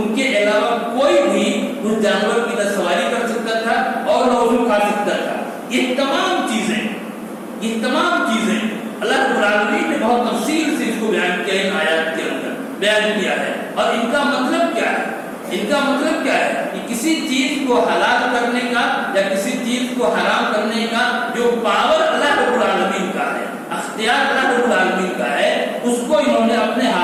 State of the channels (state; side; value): identical; both; correlation 1.00